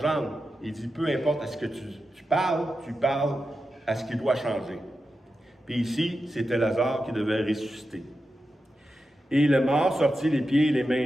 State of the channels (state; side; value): normal; both; correlation 0.90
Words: Il dit, peu importe à ce que tu parles à ce qui doit changer. Puis ici, c'était Lazare qui devait ressusciter. Et le mort sortit les pieds et les mains